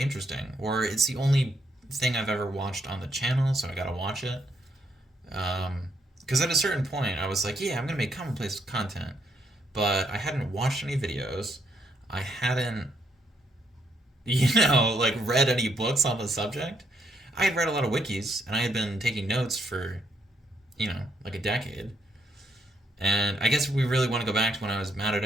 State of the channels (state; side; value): normal; both; correlation 0.74